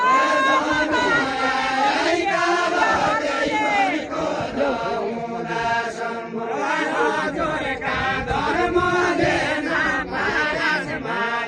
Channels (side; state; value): both; identical; correlation 1.00